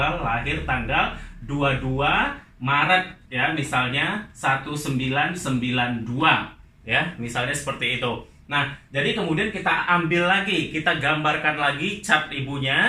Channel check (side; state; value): both; identical; correlation 1.00